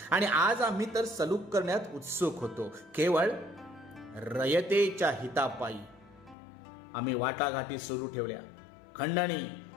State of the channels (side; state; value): right; drops out; at 6.4 s